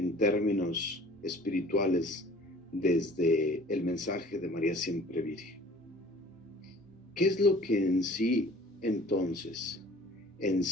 términos espirituales desde el mensaje de María Siempre Virgen, ¿qué es lo que en sí entonces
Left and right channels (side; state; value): both; normal; correlation 0.49